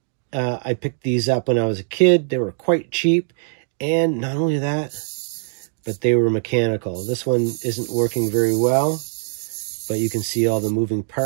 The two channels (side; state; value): left; silent; digital silence